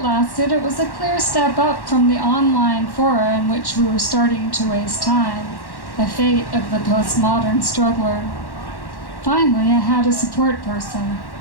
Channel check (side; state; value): right; late; 1.1 ms